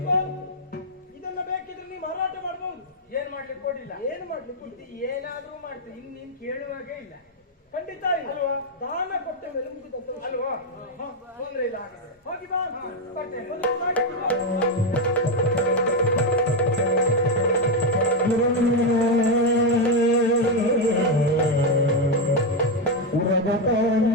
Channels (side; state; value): both; normal; correlation 0.05